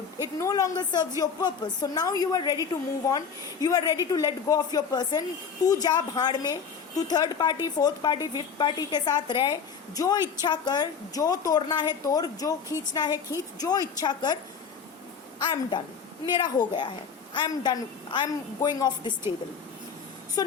It no longer serves your purpose. So now you are ready to move on. You are ready to let go of your person. तू जा भाड़ में, तू third party, fourth party, fifth party के साथ रह, जो इच्छा कर, जो तोड़ना है तोड़, जो खींचना है खींच, जो इच्छा कर. I am done. मेरा हो गया है. I am done. I am going off this table. So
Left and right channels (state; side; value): quieter; right; 6.3 dB